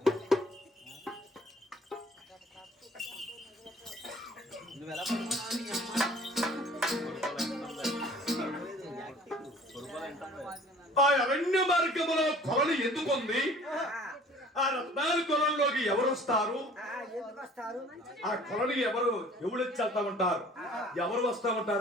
ఆ అరణ్య మార్గములో కొలను ఎందుకుంది? ఆ రత్నాల కొలంలోకి ఎవరు వస్తారు? ఆ కొలని ఎవరు వెళ్తా ఉంటారు? ఎవరు వస్తా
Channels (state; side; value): normal; both; correlation 0.50